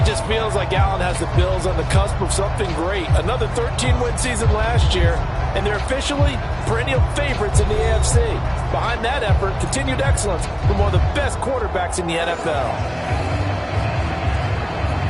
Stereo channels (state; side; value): identical; both; correlation 1.00